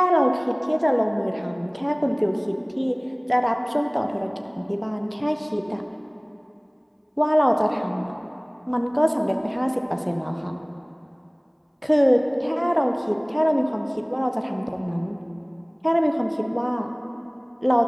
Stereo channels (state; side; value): identical; both; correlation 1.00